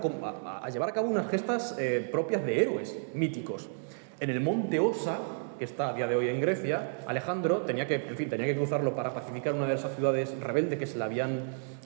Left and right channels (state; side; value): silent; left; digital silence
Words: a llevar a cabo unas gestas propias de héroes míticos. En el monte Osa, que está a día de hoy en Grecia, Alejandro tenía que cruzarlo para pacificar una de esas ciudades rebeldes que se le habían